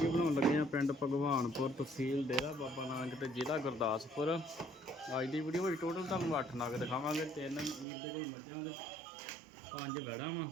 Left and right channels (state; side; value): drops out; left; at 7.9 s